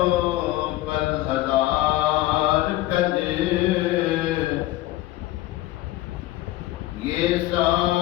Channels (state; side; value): quieter; right; 16.6 dB